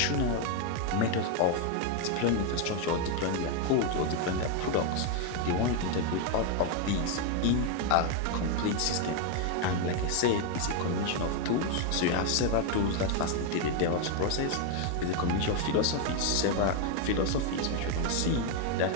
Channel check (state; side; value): different; both; correlation 0.01